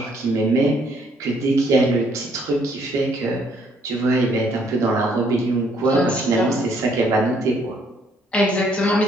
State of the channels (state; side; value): normal; both; correlation 0.67